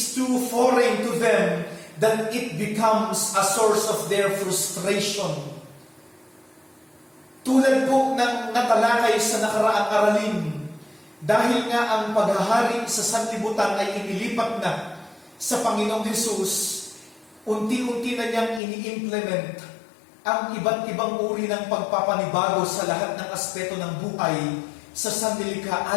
too foreign to them that it becomes a source of their frustration. Tulad po ng natalakay sa nakaraang aralin, dahil nga ang paghahari sa sanlibutan ay inilipat na sa Panginoong Hesus, unti-unti na niyang ini-implement ang iba't ibang uri ng pagpapanibago sa lahat ng aspeto ng buhay sa sanlilikha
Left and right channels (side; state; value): right; drops out; at 18.6 s